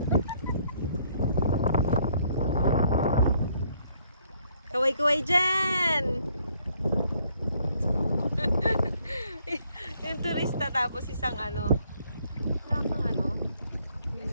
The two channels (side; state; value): both; inverted; correlation -0.67